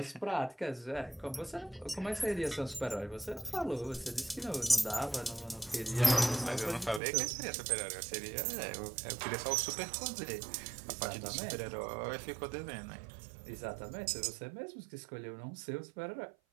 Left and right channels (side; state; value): left; drops out; at 7.0 s